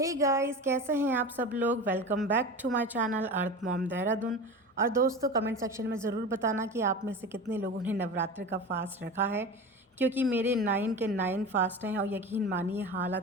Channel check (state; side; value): normal; both; correlation 0.30